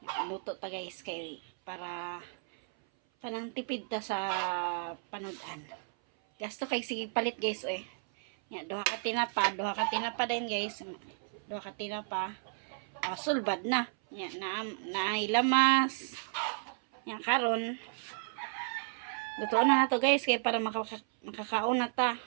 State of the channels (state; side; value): silent; left; 56 dB below the other